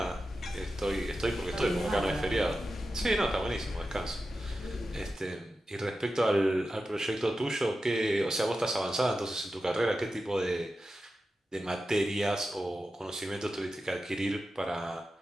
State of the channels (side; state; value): both; normal; correlation 0.92